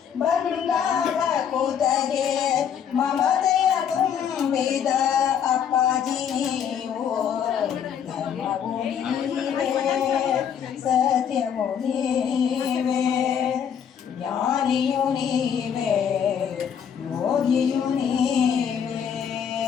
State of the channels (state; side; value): quieter; right; 8.1 dB